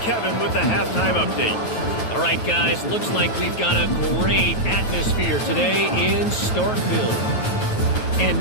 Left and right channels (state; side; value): late; right; 9.1 ms